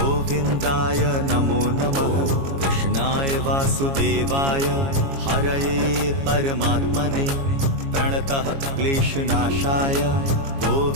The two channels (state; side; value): late; left; 22 ms